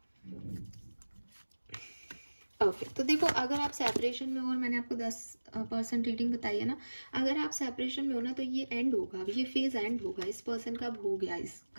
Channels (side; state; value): both; inverted; correlation -1.00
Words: ओके तो देखो अगर आप सेपरेशन में हो, और मैंने आपको 10% रीडिंग बताई है ना, अगर आप सेपरेशन में हो ना तो ये एंड होगा, अब ये फेज एंड होगा, इस पर्सन का अब हो गया इस